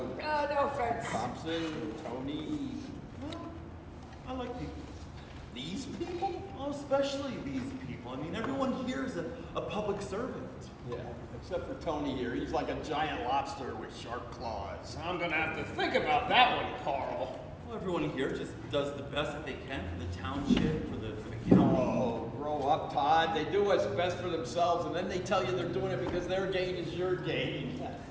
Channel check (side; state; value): both; identical; correlation 1.00